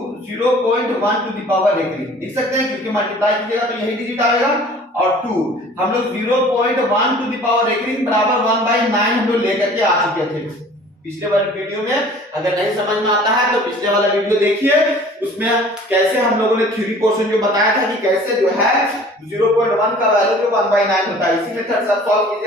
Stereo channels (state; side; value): normal; both; correlation 0.48